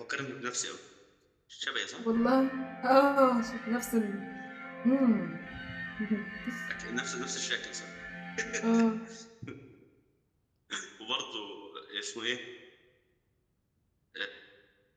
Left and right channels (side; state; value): both; identical; correlation 1.00